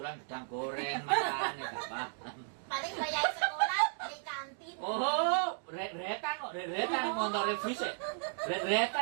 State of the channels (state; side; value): silent; left; 55 dB below the other